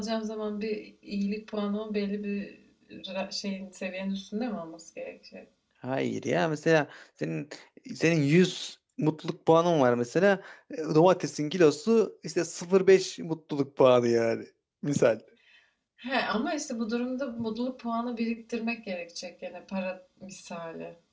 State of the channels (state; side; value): identical; both; correlation 1.00